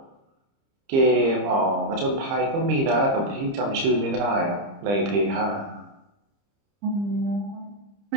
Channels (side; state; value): left; late; 30 ms